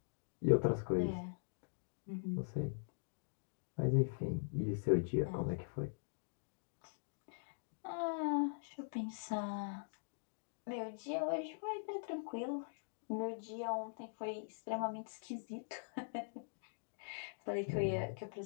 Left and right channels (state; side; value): silent; right; digital silence